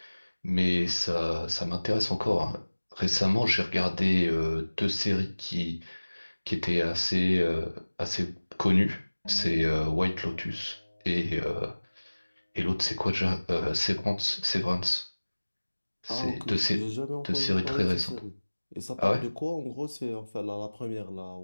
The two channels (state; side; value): inverted; both; correlation -1.00